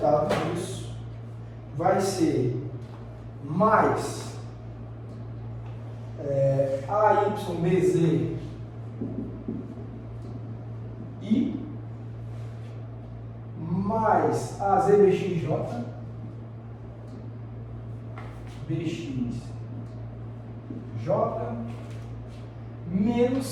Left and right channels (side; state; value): both; identical; correlation 1.00